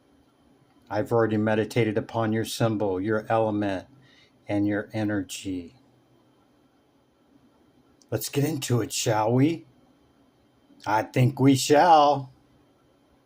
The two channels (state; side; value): identical; both; correlation 1.00